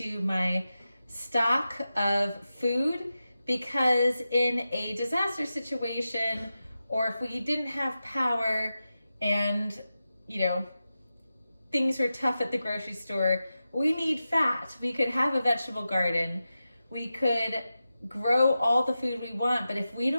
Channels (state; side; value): inverted; both; correlation -0.92